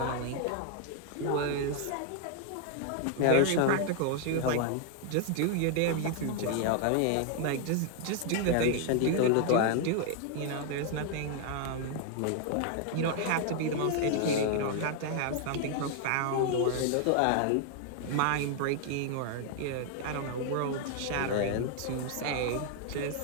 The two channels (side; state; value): both; different; correlation 0.00